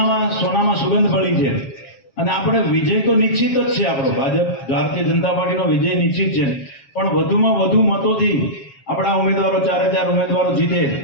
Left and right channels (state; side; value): late; right; 7.3 ms